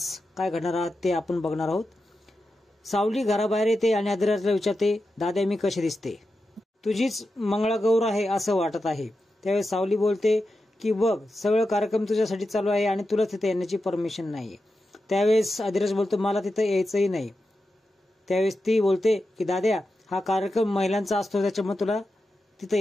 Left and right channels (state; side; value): normal; both; correlation 0.90